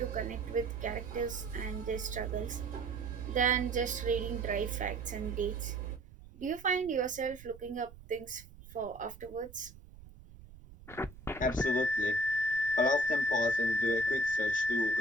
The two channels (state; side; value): noise; right; rumble, 19 dB below the sound